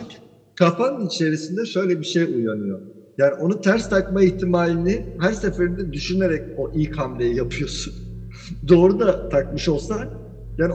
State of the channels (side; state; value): both; identical; correlation 1.00